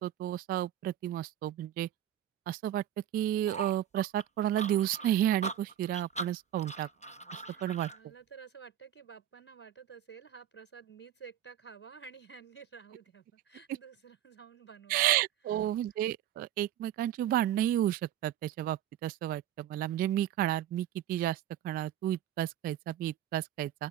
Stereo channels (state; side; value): quieter; left; 11.8 dB